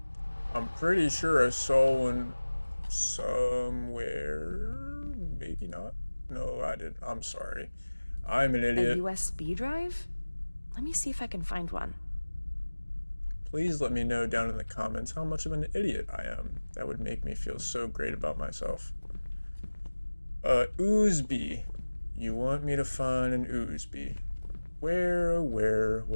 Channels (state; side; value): inverted; both; correlation -1.00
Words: I'm pretty sure I saw one somewhere. Maybe not. No, I didn't. I'm sorry. I'm an idiot. A USB drive? Let me see if I can find one. Please let me know down in the comments how much of an idiot I am. That would make me feel so great about myself. USB. You want me to find an USB? Where